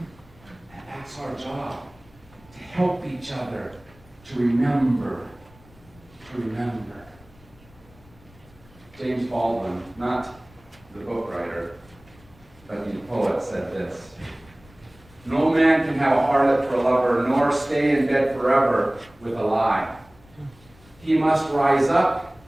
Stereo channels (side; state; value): left; noise; rumble, 26 dB below the sound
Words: that's our job, to help each other to remember. James Baldwin, not the book writer, but the poet, said this: "No man can have a harlot for a lover, nor stay in bed forever with a lie. He must rise up